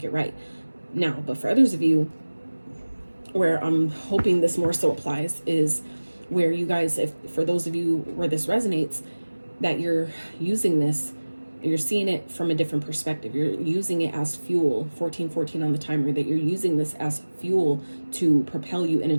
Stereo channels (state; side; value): inverted; both; correlation -1.00